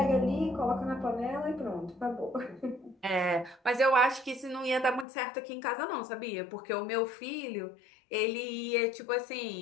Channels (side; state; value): right; drops out; at 5.1 s